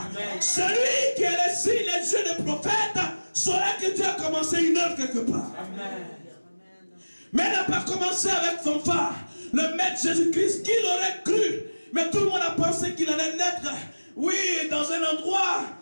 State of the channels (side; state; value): both; inverted; correlation -1.00